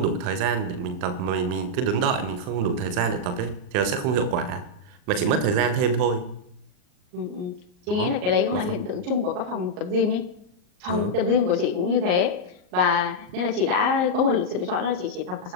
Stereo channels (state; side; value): late; left; 39 ms